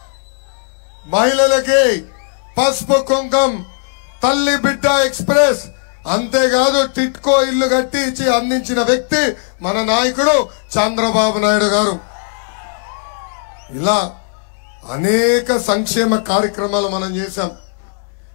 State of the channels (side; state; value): right; silent; 69 dB below the other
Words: మహిళలకి పసుపు కుంకం, తల్లి బిడ్డ ఎక్స్ప్రెస్, అంతేకాదు టిట్కో ఇల్లు కట్టి ఇచ్చి అందించిన వ్యక్తి మన నాయకుడు చంద్రబాబు నాయుడు గారు. ఇలా అనేక సంక్షేమ కార్యక్రమాలు మనం చేశాం.